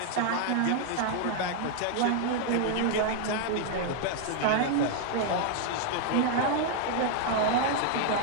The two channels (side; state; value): both; different; correlation 0.00